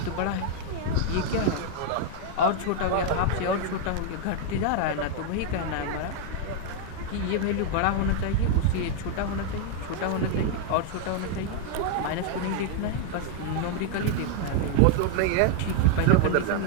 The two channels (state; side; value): different; both; correlation 0.00